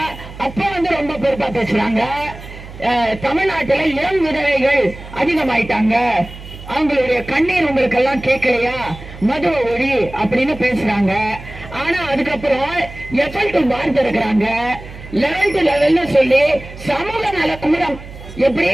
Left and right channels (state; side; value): noise; right; hum, 15 dB below the sound